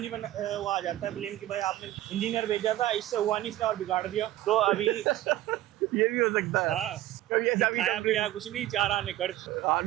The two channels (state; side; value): quieter; left; 14.7 dB